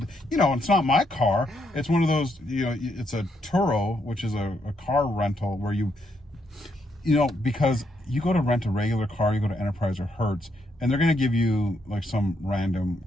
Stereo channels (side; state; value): both; normal; correlation 0.77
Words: you know, it's not my car. It's one of those, you know, it's a Turo, which is a car rental where you know, because you go to rent a regular car, you go to Enterprise or Hertz, and they're going to give you like some random